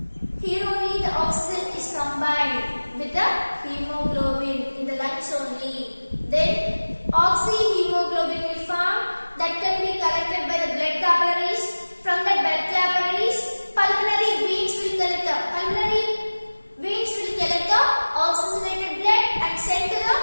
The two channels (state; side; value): inverted; both; correlation -1.00